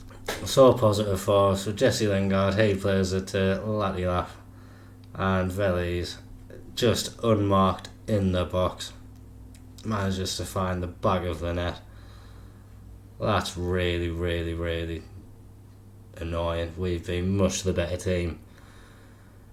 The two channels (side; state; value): both; identical; correlation 1.00